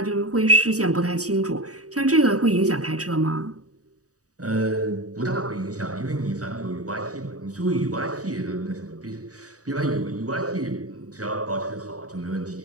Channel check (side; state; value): left; late; 0.66 ms